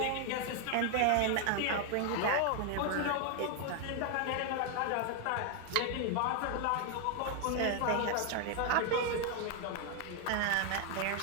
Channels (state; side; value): different; both; correlation 0.00